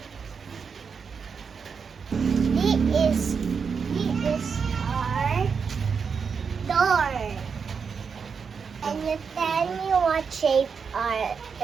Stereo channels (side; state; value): left; quieter; 5.9 dB